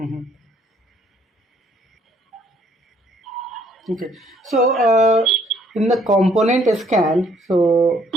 Okay. So in the component scan, so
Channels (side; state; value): both; normal; correlation 0.64